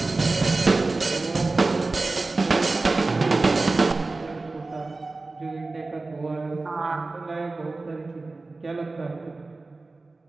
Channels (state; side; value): quieter; left; 3.5 dB